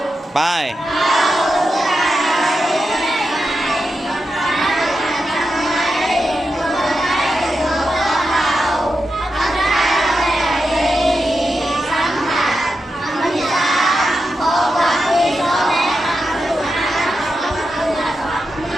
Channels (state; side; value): normal; both; correlation 0.88